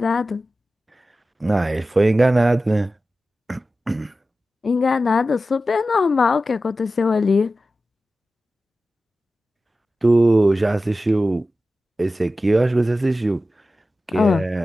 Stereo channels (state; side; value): normal; both; correlation 0.94